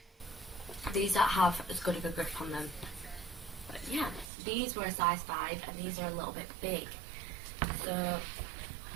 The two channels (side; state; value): left; drops out; at 4.2 s